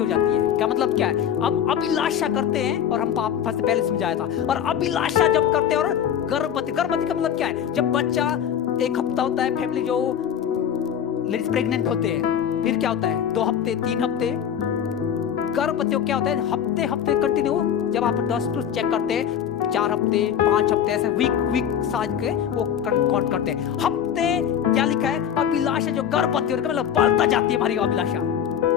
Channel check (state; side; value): quieter; right; 9.1 dB